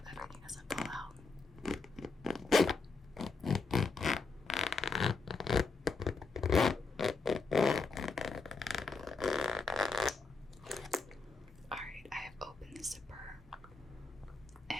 everything doesn't fall out. Alright, I have opened the zipper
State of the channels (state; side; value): quieter; right; 4.2 dB